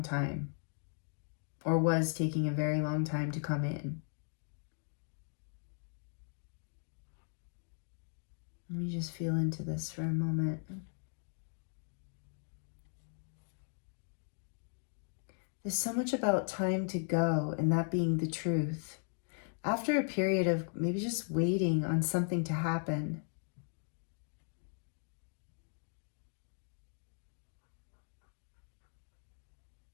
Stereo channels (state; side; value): silent; right; 53 dB below the other